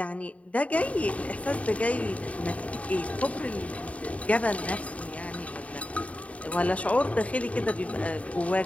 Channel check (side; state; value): right; late; 0.067 ms